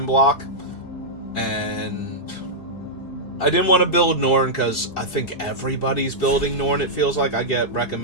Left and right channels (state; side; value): late; right; 4.7 ms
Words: block. And I didn't want to build Norn because I think everybody's building Norn, it feels like. I get